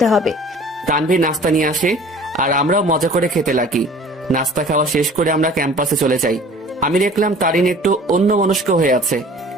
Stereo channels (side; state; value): both; normal; correlation 0.47